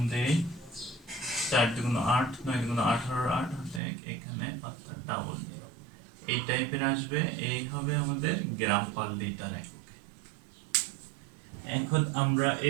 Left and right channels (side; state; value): left; drops out; at 3.8 s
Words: দেই 4 দুগুণ 8 9 দুগুণ 18 8 দেখ এখানে অর্থাৎ ডাবল 0 এই টাইপের আসবে। এই হবে আমাদের গ্রাম পার লিটার এককে। এখন আমরা